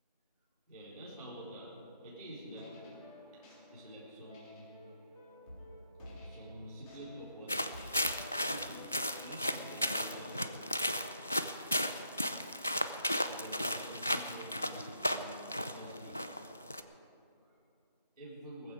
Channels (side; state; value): both; inverted; correlation -0.75